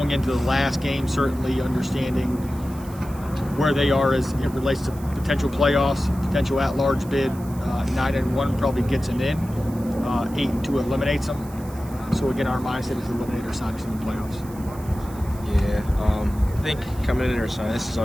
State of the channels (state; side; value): noise; right; hiss, 21 dB below the sound